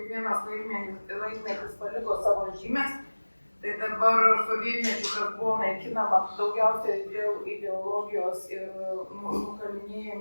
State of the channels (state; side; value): inverted; both; correlation -1.00